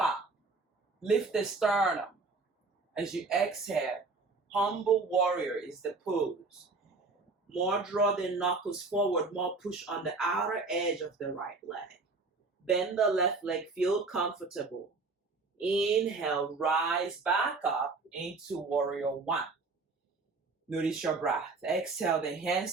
Lift the sternum. As you exhale, humble warrior is the pose. More draw the knuckles forward. More push on the outer edge of the right leg. Bend the left leg, feel comfortable. Inhale, rise back up into warrior one. Notice your breath. Exhale, the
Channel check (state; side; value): quieter; left; 3.9 dB